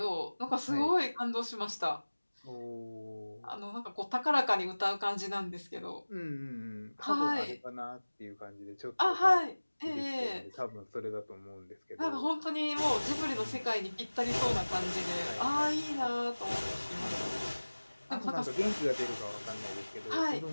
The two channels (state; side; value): inverted; both; correlation -1.00